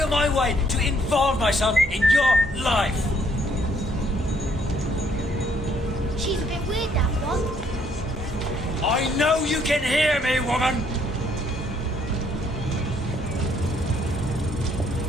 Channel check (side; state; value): both; normal; correlation 0.67